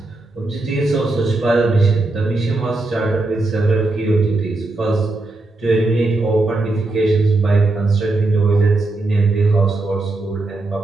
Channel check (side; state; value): left; quieter; 3.0 dB